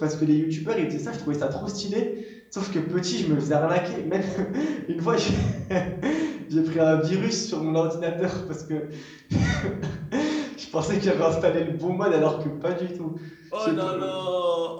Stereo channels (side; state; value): both; identical; correlation 1.00